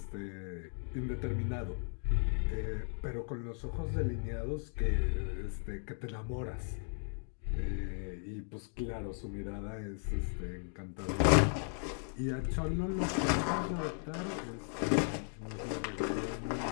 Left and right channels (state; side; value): silent; right; 54 dB below the other